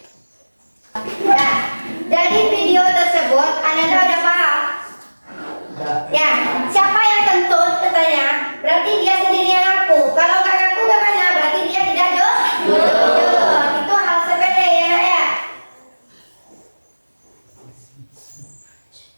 Nah, dari video tersebut Anda udah paham? Ya, siapa yang kentut katanya? Berarti dia sendiri yang ngaku. Kalau nggak ngaku gimana? Berarti dia tidak jujur. Itu hal sepele ya, Nak, ya.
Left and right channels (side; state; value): both; inverted; correlation -1.00